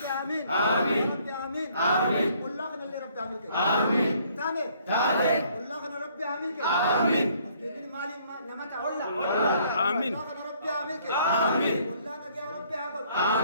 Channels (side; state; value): both; inverted; correlation -0.63